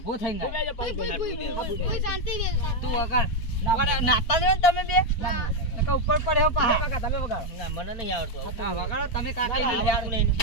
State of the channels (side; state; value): right; late; 4.4 ms